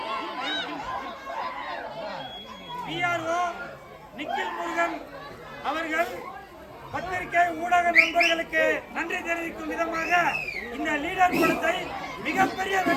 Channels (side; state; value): both; identical; correlation 1.00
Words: PRO நிக்கில் முருகன் அவர்கள் பத்திரிகை ஊடக நண்பர்களுக்கு நன்றி தெரிவிக்கும் விதமாக இந்த லீடர் படத்தை மிகப்பெரிய